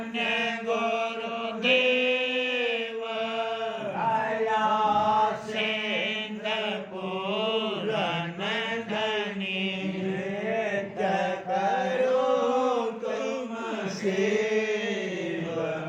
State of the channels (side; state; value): both; identical; correlation 1.00